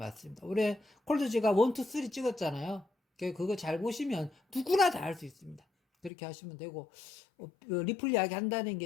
우리 콜드 지갑 1, 2, 3 찍었잖아요. 그거 잘 보시면 누구나 다 할 수 있습니다. 그렇게 하시면 되고, 리플 이야기 한다는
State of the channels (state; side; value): drops out; right; at 6.1 s